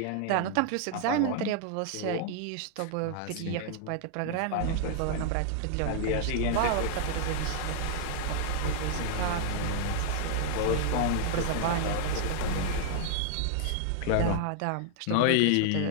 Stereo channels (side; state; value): both; different; correlation 0.00